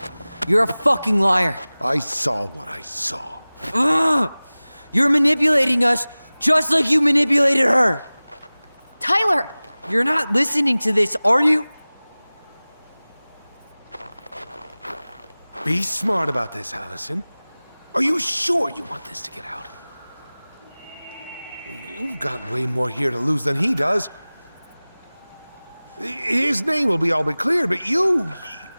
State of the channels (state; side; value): inverted; both; correlation -0.99